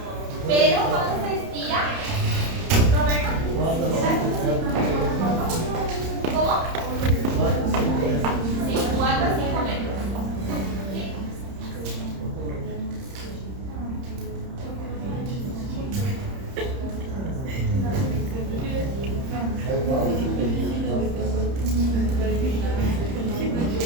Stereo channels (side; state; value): left; late; 30 ms